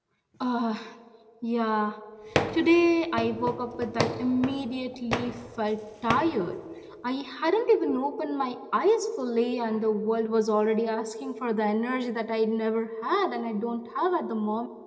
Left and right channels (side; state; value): both; identical; correlation 1.00